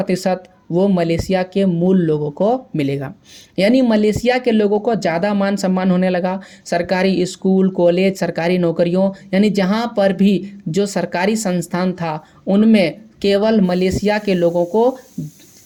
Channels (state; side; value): identical; both; correlation 1.00